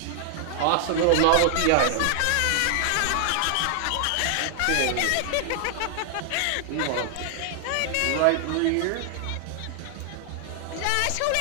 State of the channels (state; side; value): different; both; correlation 0.00